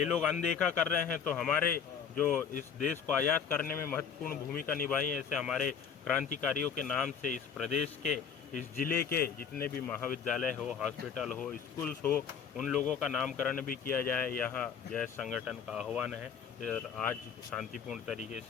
लोग अनदेखा कर रहे हैं, तो हमारे जो इस देश को आज़ाद करने में महत्वपूर्ण भूमिका निभाई है, ऐसे हमारे क्रांतिकारियों के नाम से इस प्रदेश के, इस ज़िले के जितने भी महाविद्यालय हो, हॉस्पिटल हो, स्कूल्स हो, उन लोगों का नामकरण भी किया जाए। यहाँ जय संगठन का आह्वान है और आज शांतिपूर्ण तरीके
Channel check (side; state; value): right; quieter; 7.0 dB